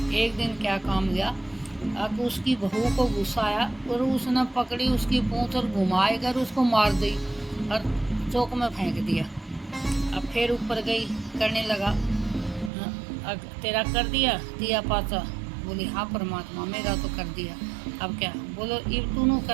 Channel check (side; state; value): left; drops out; at 12.7 s